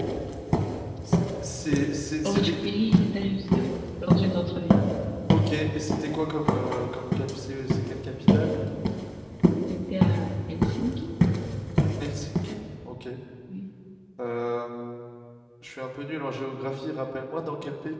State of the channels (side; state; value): both; identical; correlation 1.00